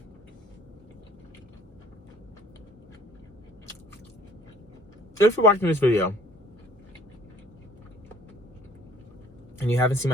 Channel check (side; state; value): both; normal; correlation 0.55